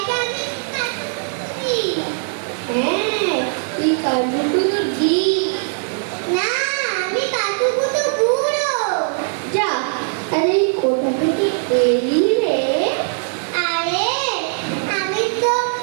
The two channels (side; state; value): left; silent; 59 dB below the other